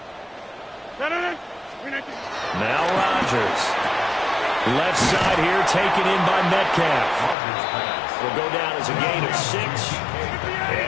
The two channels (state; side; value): drops out; right; at 7.4 s